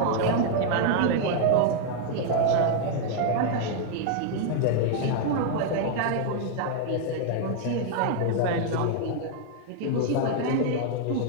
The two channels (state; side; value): different; both; correlation 0.00